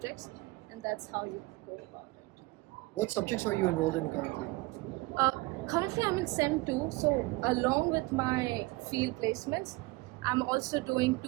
and that's how you go about it. What subjects are you enrolled in currently? Currently, I'm in SEM 2, so along with my field placements, I'm also doing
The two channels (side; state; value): left; quieter; 22.3 dB